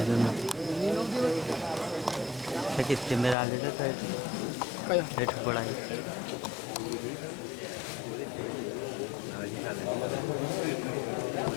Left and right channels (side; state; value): right; drops out; at 3.4 s